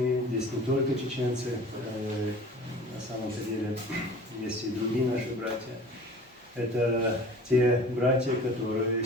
Здесь не только чеченцы, на самом-то деле есть и другие наши братья. Это те братья, которые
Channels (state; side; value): normal; both; correlation 0.43